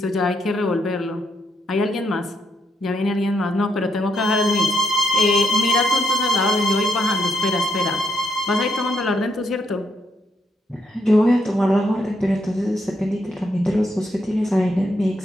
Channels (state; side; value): normal; both; correlation 0.76